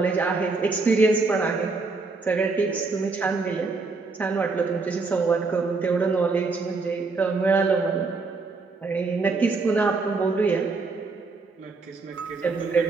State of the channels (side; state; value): left; quieter; 4.0 dB